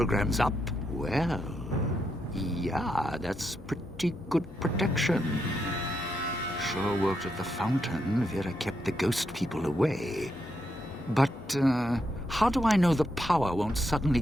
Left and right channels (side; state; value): both; normal; correlation 0.81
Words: up? Well, yeah, that's pretty good protection. Sure worked at the fountain. Vera kept the ghost people away. But, how do I know the power won't suddenly